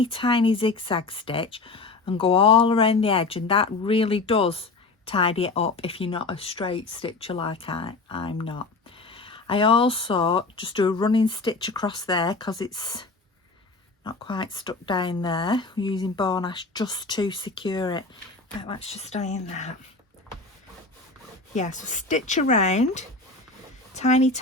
tiny zigzag stitch and go all around the edge, and that really does tidy it up if you're not a straight stitcher like I'm not. I also just do a running stitch across there, because it's not quite stuck down there. I'm using bone ash just to secure it. Right, let's just stay in that. Yeah, so stitch around, tiny,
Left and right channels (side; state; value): right; quieter; 3.6 dB